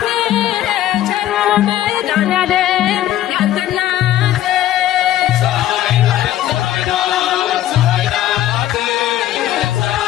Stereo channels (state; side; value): quieter; right; 12.9 dB